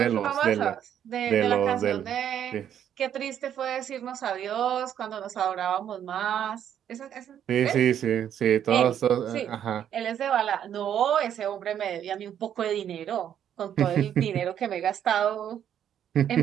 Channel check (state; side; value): quieter; left; 9.7 dB